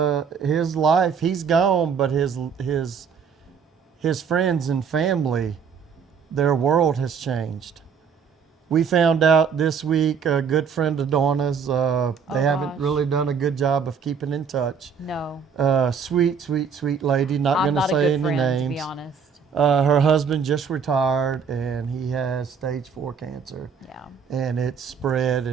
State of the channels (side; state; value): left; quieter; 6.4 dB